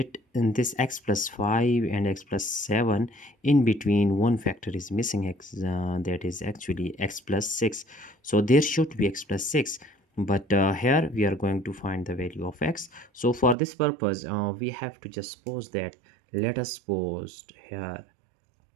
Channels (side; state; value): left; drops out; at 13.6 s